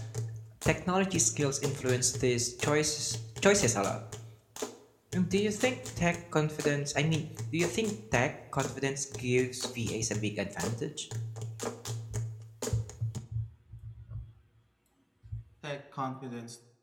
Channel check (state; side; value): identical; both; correlation 1.00